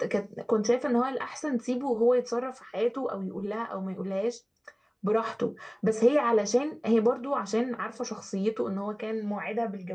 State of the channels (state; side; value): identical; both; correlation 1.00